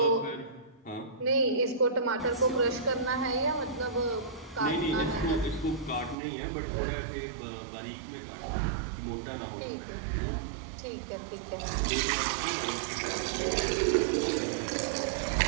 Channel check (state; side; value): drops out; left; at 6.2 s